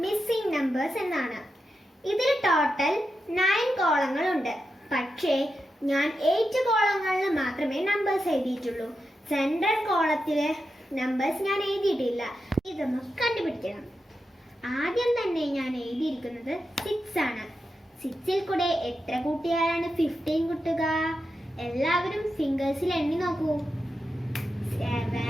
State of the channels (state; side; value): normal; both; correlation 0.88